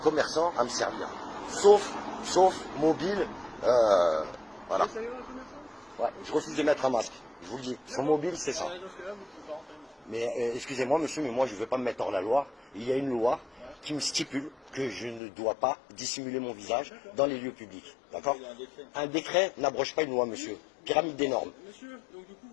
à me servir. Sauf mobile, voilà. Ouais, je refuse de mettre un masque. Je vous le dis, son mobile, c'est ça. Mais excusez-moi, monsieur, mais moi, je ne veux pas me mettre hors la loi. Il y a une loi qui me stipule que je ne dois pas dissimuler mon visage dans les lieux publics. D'accord? Un décret n'abroge pas une loi, monsieur. Pyramide des normes. Monsieur, donc du coup,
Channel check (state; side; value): drops out; right; at 15.2 s